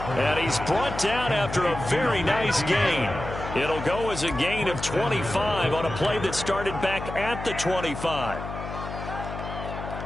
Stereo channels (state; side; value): noise; left; hum, 8 dB below the sound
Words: he's brought down after a very nice gain. It'll go as a gain of 25 on a play that started back at the 25.